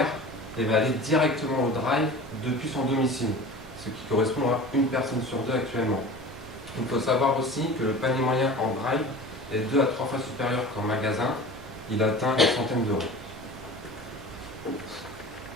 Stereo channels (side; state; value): both; normal; correlation 0.37